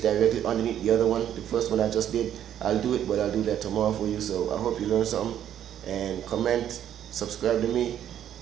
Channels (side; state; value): left; quieter; 10.4 dB